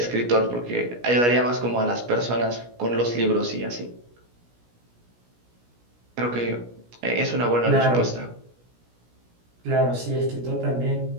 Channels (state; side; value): late; left; 17 ms